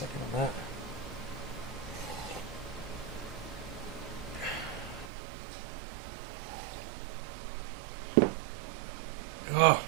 on that. Oh.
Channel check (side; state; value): left; drops out; at 5.1 s